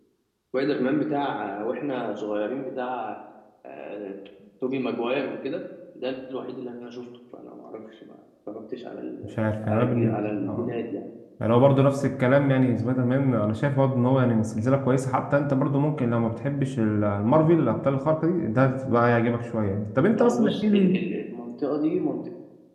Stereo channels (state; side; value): identical; both; correlation 1.00